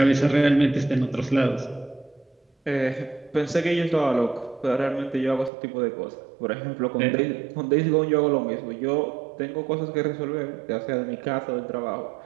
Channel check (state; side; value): drops out; left; at 5.5 s